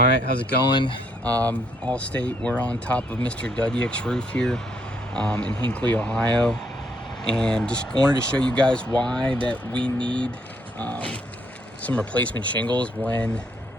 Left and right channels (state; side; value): normal; both; correlation 0.71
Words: right, how's it going? All state, we're on top of Mr. Dudyak's roof here in Hinckley, Ohio. And just wanted to show you guys why that we need some replacement shingles when